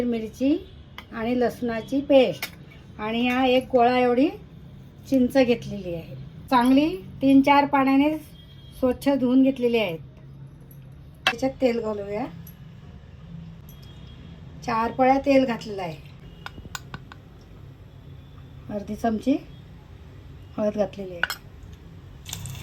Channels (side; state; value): both; identical; correlation 1.00